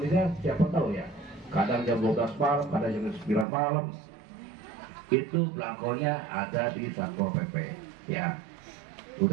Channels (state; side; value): drops out; left; at 3.5 s